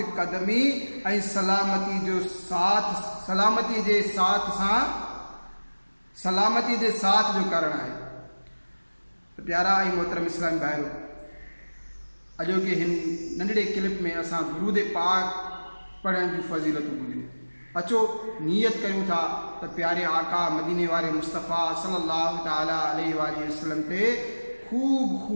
कदमी ऐं सलामती जे साथ जो कारण आहे। प्यारा ऐं मोहतरम इस्लामी भाइरो, अॼोके हिन नंढड़े क्लिप में असां दुरूद पाक पढ़ण जूं फज़ीलतूं ॿुधियूं। अचो नियत कयूं था त प्यारे आका मदीने वारे मुस्तफ़ा सल्लल्लाहु ताला अलैहि वसल्लम ते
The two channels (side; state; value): both; inverted; correlation -1.00